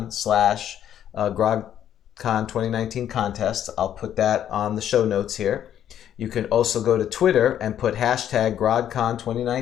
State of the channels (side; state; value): right; quieter; 10.4 dB